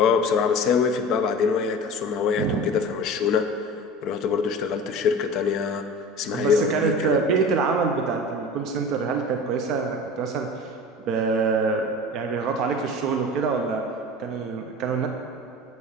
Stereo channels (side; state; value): both; normal; correlation 0.35